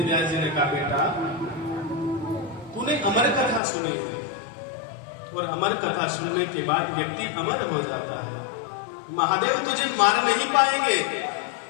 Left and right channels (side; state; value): right; drops out; at 3.6 s